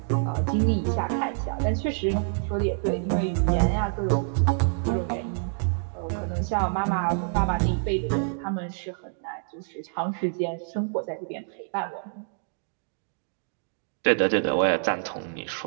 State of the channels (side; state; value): left; silent; digital silence